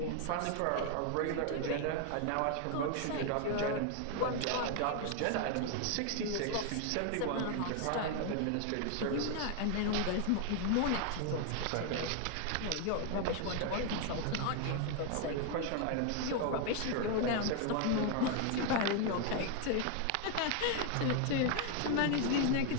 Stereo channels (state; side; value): different; both; correlation 0.00